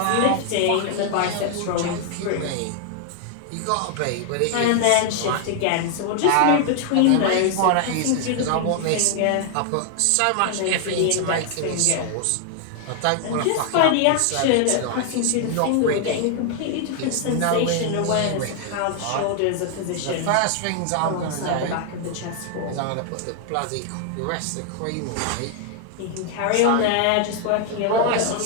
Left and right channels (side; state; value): both; different; correlation 0.00